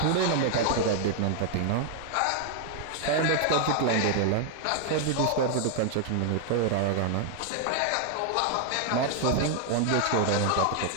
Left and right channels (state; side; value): different; both; correlation 0.00